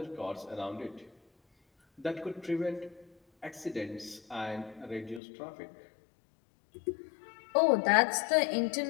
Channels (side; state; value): right; drops out; at 5.2 s